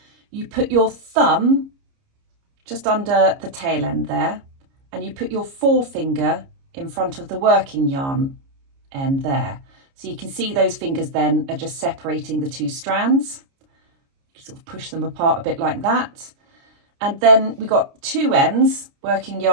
You put your thumb just under the tail end there, and you put your forefinger in front of the working yarn end there. So you can see those fingers then are just separating the 2 strands. You sort of push them apart a bit like that. And then we've got 2 ends, working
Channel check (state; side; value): late; left; 29 ms